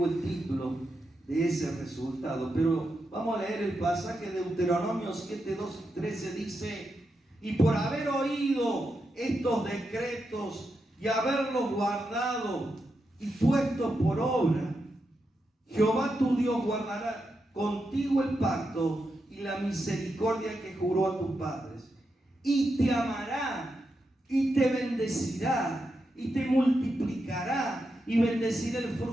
el título de ese resultado, pero vamos a leer el pasaje de Deuteronomio 7, 12, 13. Dice: y por haber oído estos decretos y haberlos guardado y puesto por obra, Jehová tu Dios guardará contigo el pacto y la misericordia que juró a tus padres, y te amará, y te bendecirá, y te multiplicará, y bendecirá el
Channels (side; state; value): both; normal; correlation 0.86